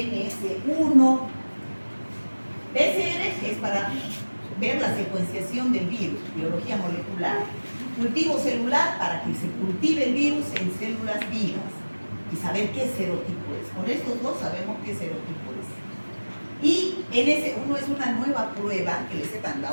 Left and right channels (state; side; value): inverted; both; correlation -1.00